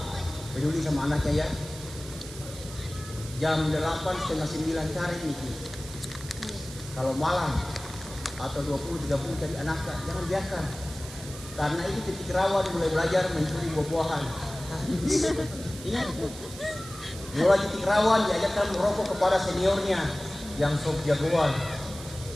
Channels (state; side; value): noise; right; hiss, 14 dB below the sound